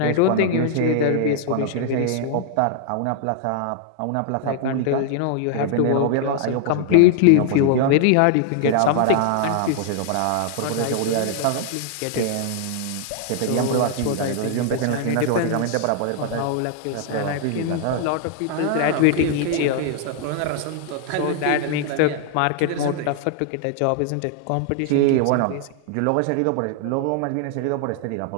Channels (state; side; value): different; both; correlation 0.00